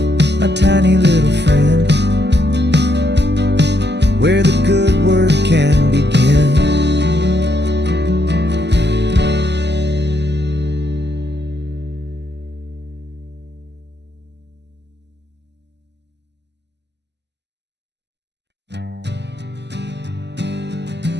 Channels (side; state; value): left; late; 0.50 ms